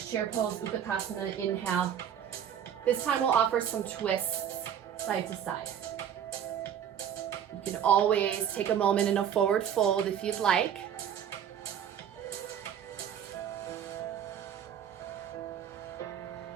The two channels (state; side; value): quieter; left; 9.2 dB